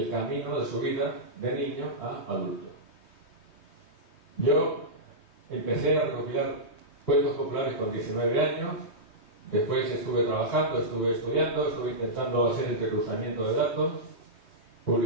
camino de su vida de niño a adulto. Yo empecé a recopilar cuentos populares con 19 años, después estuve trabajando, estuve estudiando, estuve intentando hacer entrecruzamiento de datos,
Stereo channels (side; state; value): right; late; 3.2 ms